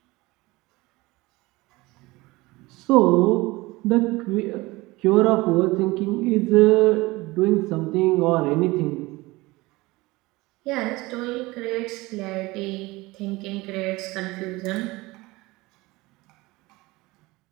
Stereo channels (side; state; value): left; quieter; 21.4 dB